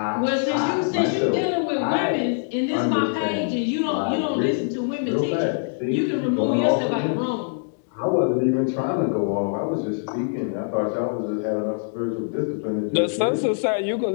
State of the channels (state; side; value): silent; right; digital silence